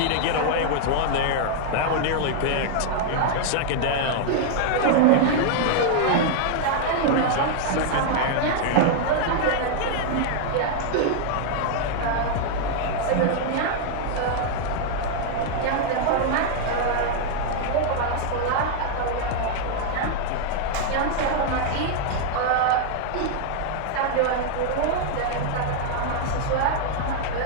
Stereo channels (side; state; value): both; different; correlation -0.01